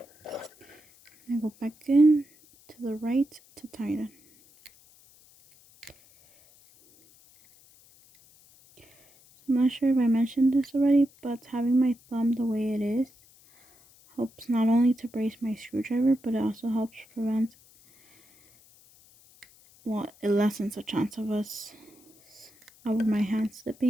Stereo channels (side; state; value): left; noise; hiss, 28 dB below the sound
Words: And I go back in to the right to tighten. I'm not sure if I mentioned this already, but having my thumb the way it is helps not only to brace my screwdriver, but it also helps prevent, well, it lessens the chance of my hand